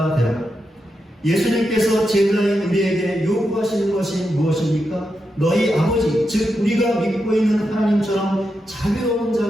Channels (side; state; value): both; normal; correlation 0.86